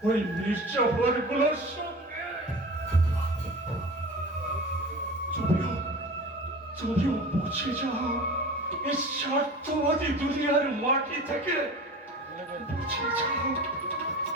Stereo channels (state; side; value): normal; both; correlation 0.35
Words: ওই নির্যাতন গুলোর সঙ্গে। তুমিও মুছে যাও এই স্বার্থবাদী দুনিয়ার মাটি থেকে, মুছে যাও,